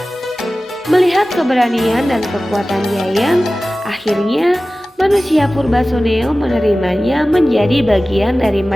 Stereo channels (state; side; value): normal; both; correlation 0.96